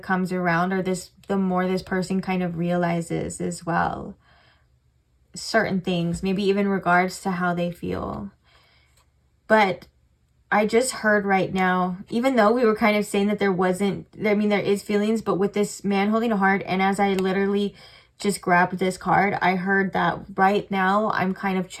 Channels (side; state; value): both; identical; correlation 1.00